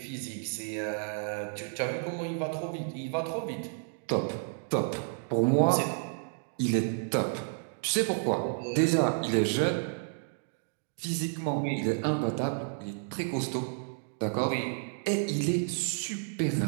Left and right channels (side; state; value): left; silent; digital silence